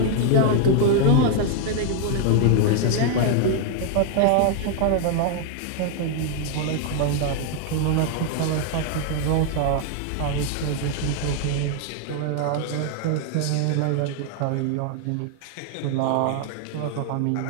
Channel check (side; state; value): both; different; correlation 0.00